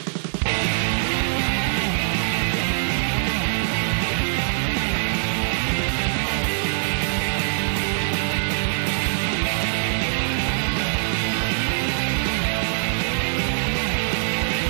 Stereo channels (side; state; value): left; silent; digital silence